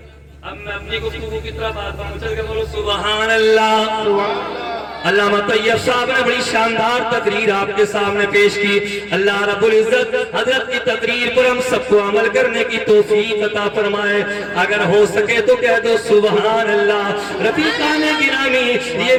अब मैं अपनी गुफ्तगू की तरफ आता हूं, चल के बोलो सुभान अल्लाह। अल्लामा तैयब साहब ने बड़ी शानदार तकरीर आपके सामने पेश की। अल्लाह रब्बुल इज्जत हजरत की तकरीर पर हम सबको अमल करने की तौफीक अता फरमाए। अगर हो सके तो कह दो सुभान अल्लाह। रफीकान गिरामी,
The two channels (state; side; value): identical; both; correlation 1.00